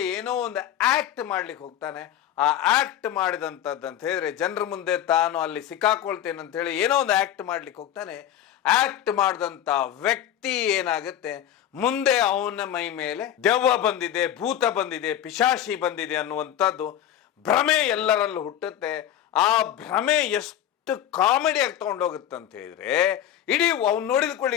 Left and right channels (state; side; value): quieter; right; 11.0 dB